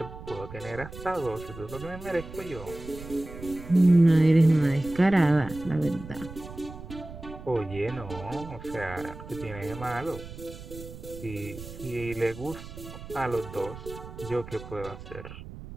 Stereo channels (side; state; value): right; noise; rumble, 13 dB below the sound